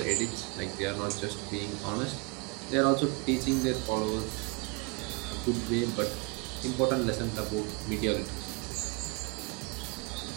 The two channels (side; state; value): left; quieter; 29.6 dB